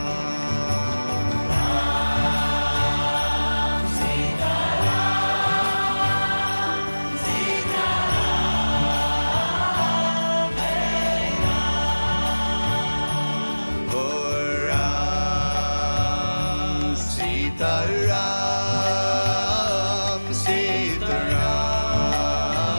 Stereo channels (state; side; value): inverted; both; correlation -1.00